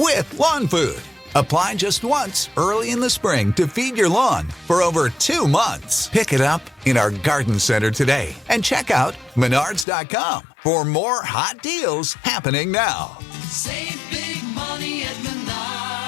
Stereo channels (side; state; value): right; drops out; at 9.9 s